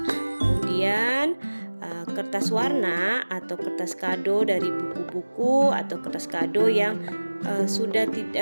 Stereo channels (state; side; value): inverted; both; correlation -1.00